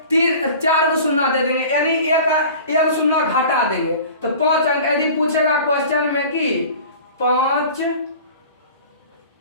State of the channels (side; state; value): both; inverted; correlation -0.41